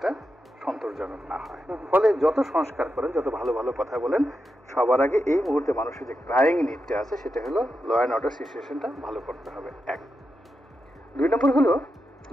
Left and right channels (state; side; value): normal; both; correlation 0.87